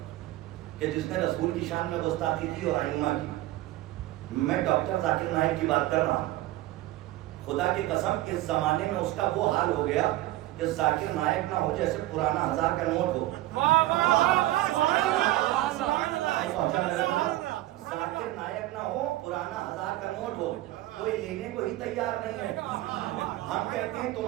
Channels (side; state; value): left; quieter; 16.5 dB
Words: کہ جس نے رسول کی شان میں گستاخی کی اور ائمہ کی. میں ڈاکٹر ذاکر نائک کی بات کر رہا ہوں. خدا کی قسم اس زمانے میں اس کا وہ حال ہو گیا کہ ذاکر نائک نہ ہو جیسے پرانا 1000 کا نوٹ ہو. ذاکر نائک نہ ہو پرانا 1000 کا نوٹ ہو, کوئی لینے کو ہی تیار نہیں ہے. ہم کہتے ہیں